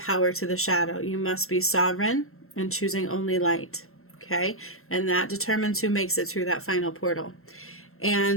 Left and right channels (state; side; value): late; right; 0.62 ms